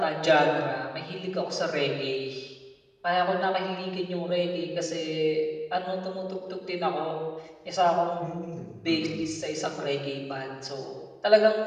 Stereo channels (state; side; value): identical; both; correlation 1.00